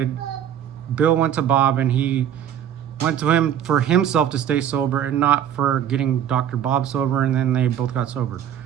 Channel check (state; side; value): quieter; left; 9.8 dB